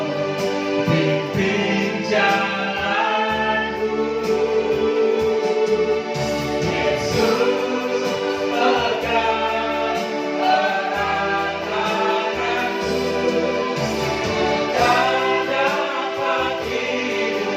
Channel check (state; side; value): identical; both; correlation 1.00